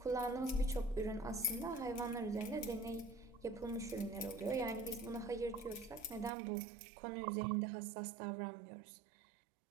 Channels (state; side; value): drops out; left; at 6.3 s